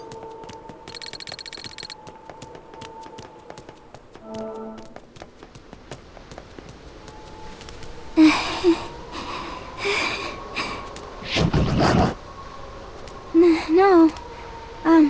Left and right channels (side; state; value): both; identical; correlation 1.00